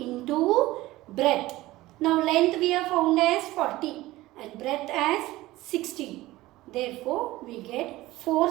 breadth. Now length we have found as 40 and breadth as 60. Therefore we get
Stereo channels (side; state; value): left; quieter; 17.7 dB